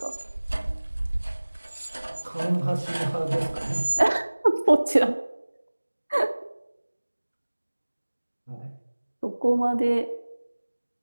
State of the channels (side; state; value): both; inverted; correlation -1.00